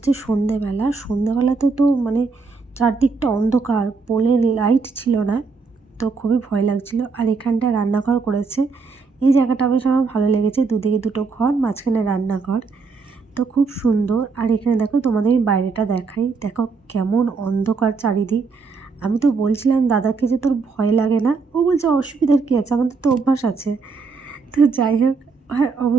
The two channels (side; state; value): left; quieter; 4.6 dB